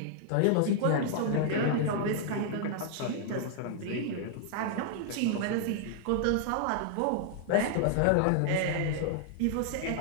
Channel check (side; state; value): both; different; correlation -0.01